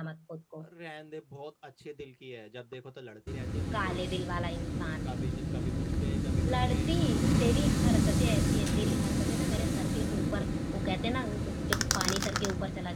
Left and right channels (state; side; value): identical; both; correlation 1.00